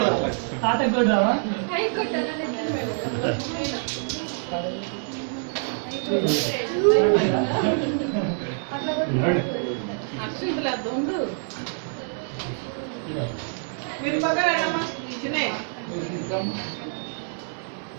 మీరు పక్కనమ్మా చిన్నే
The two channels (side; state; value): left; silent; 61 dB below the other